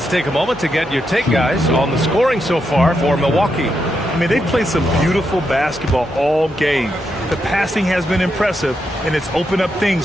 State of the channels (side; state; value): both; normal; correlation 0.83